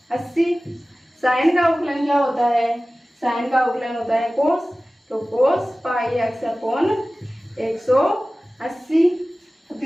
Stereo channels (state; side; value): normal; both; correlation 0.97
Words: साइन का अवकलन क्या होता है, साइन का अवकलन होता है कोस, तो कोस पाई एक्स अपॉन 180, तो